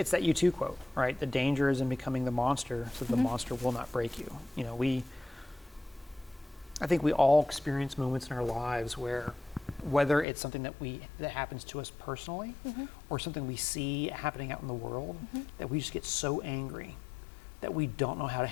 that U2 quote, right? The danger is in becoming the monster, so the monster will not break you. You know, I think we all experience moments in our lives where, whether it's something that happens to us personally, or something we see happening out in the world, that we just get so angry that we don't know how to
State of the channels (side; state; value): right; drops out; at 10.2 s